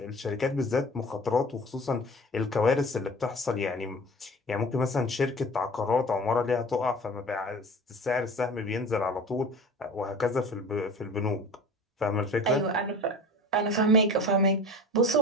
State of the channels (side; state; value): both; normal; correlation 0.39